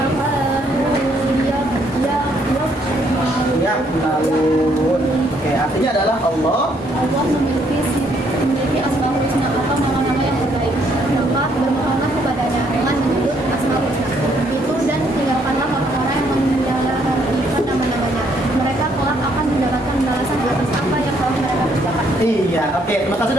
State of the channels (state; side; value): normal; both; correlation 0.69